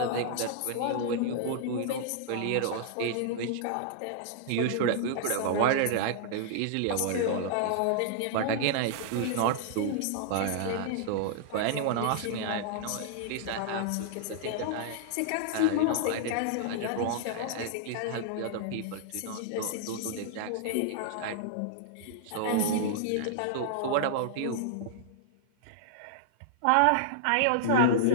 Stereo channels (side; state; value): both; different; correlation -0.01